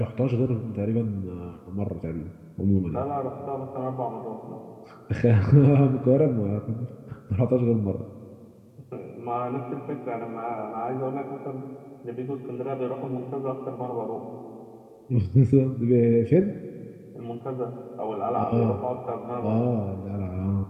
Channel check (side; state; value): both; identical; correlation 1.00